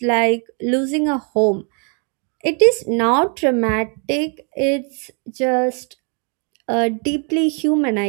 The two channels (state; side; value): quieter; left; 39.4 dB